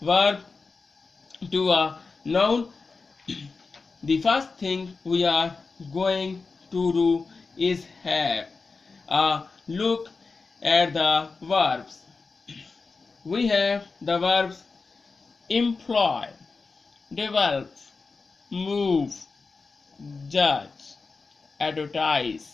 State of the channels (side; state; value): right; quieter; 4.3 dB